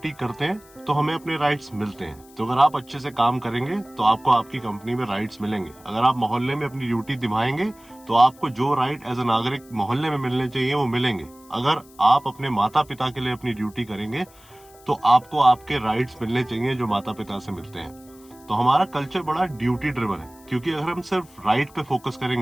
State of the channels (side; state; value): left; noise; hiss, 26 dB below the sound